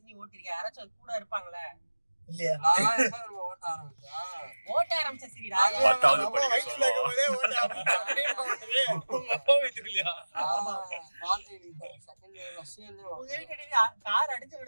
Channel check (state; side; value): inverted; both; correlation -1.00